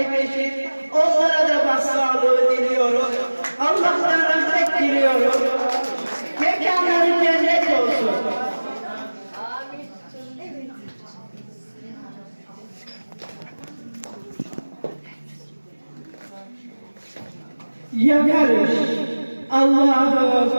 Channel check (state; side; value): inverted; both; correlation -1.00